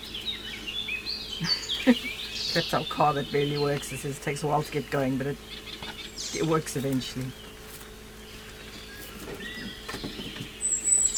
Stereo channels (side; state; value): both; identical; correlation 1.00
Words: Clapped out car that barely works. It says it takes a while to get going, but it works eventually.